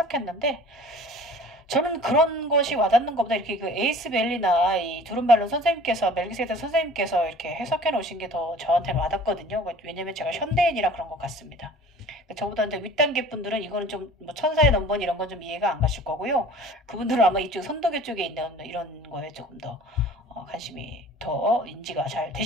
저는 그런 것이 와닿는 것보다 이렇게 에이스밸리나 이 두른발론 선생님께서 멜기세덱 선생님께서 이렇게 해석해 놓으신 게 더 저한테는 와닿거든요. 왜냐면 제가 현대인이라 그런 것 같습니다. 저보다 이제 윗단계 분들은 이거는 좀 천사의 넘버 이런 건 좀 이해가 안 가실 거고요. 그분들은 아마 이쪽 선도계 쪽에 있는 이런 거에 조금 더 관심이 더 인지가 잘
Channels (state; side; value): normal; both; correlation 0.46